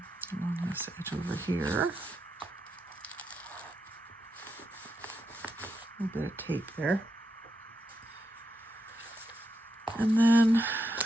along this edge over here. A little bit of tape there. And then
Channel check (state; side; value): normal; both; correlation 0.84